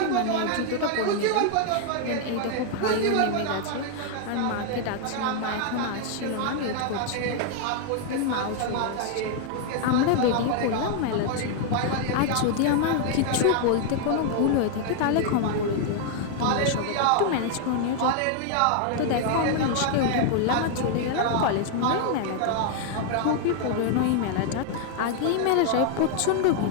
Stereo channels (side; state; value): both; different; correlation 0.00